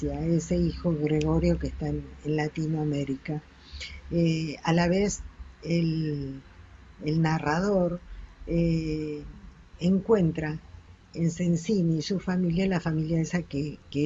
ese hijo Gregorio que está en Latinoamérica. A la vez, el, el narrador eh, encuentra en Sensini y su familia la familia esa que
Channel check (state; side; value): identical; both; correlation 1.00